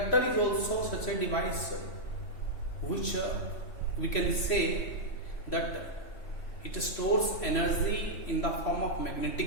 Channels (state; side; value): late; right; 3.2 ms